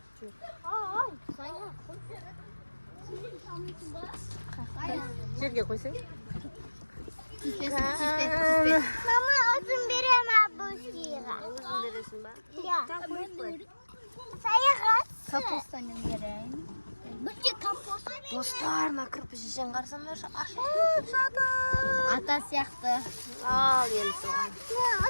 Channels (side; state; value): both; inverted; correlation -1.00